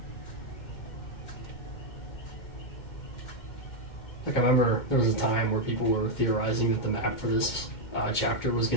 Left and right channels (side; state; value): right; late; 2.1 ms